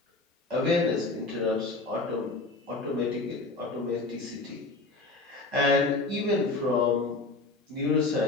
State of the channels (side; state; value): right; quieter; 3.4 dB